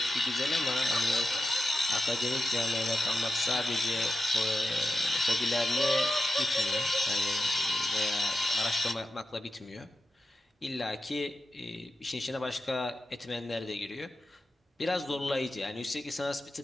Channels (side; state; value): both; normal; correlation 0.90